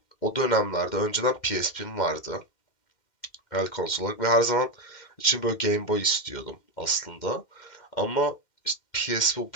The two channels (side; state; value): right; late; 2.1 ms